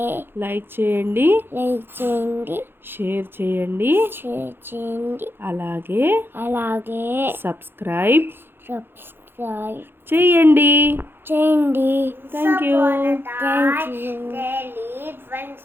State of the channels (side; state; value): left; late; 0.10 ms